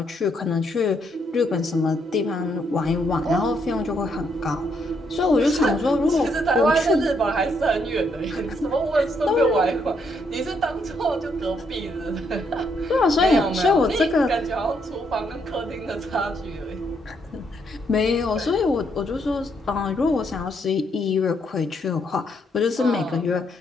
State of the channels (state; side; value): normal; both; correlation 0.74